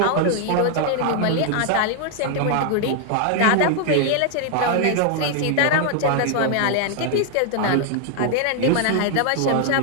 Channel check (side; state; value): both; different; correlation 0.00